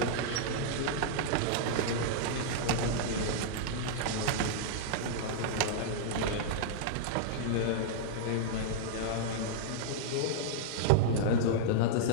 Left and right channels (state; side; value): different; both; correlation -0.02